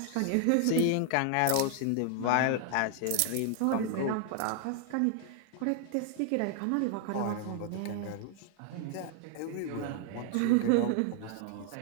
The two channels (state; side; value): different; both; correlation 0.00